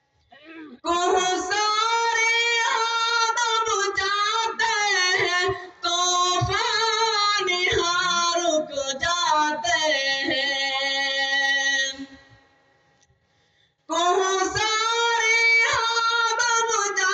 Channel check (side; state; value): both; identical; correlation 1.00